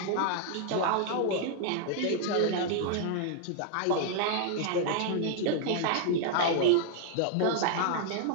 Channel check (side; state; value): both; different; correlation 0.00